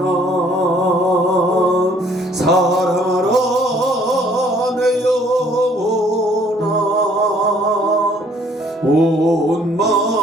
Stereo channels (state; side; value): normal; both; correlation 0.60